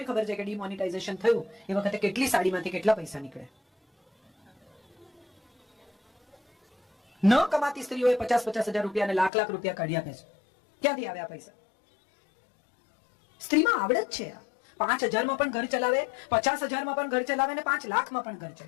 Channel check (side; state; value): right; drops out; at 9.3 s